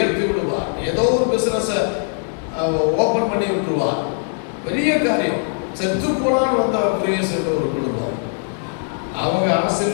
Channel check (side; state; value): right; silent; 60 dB below the other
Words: விடுவார். ஏதோ ஒரு பிசினஸ் ஓபன் பண்ணி விட்டுருவார். பெரிய காரியம். செத்து போனான்னு வந்த பிரியஸ் என்ற ஒரு குடும்பம், அவங்க